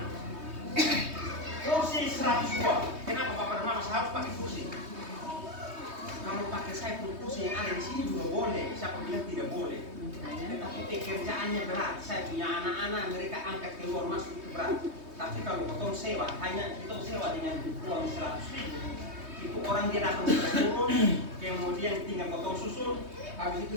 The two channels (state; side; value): late; left; 3.2 ms